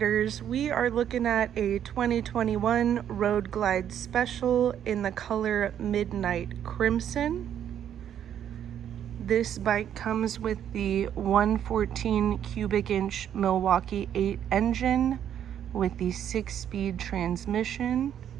we are looking at a 2021 Road Glide Special in the color Midnight Crimson. This bike comes with the 114 cubic inch Milwaukee 8 engine with the 6-speed transmission.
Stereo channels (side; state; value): left; quieter; 9.8 dB